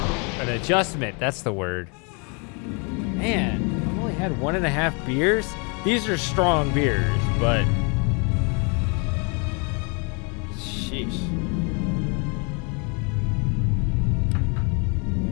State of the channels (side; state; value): right; quieter; 34.3 dB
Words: An adjustment, that's the word. Man, I've only had 1.5 beers. These are strong beers, but sheesh.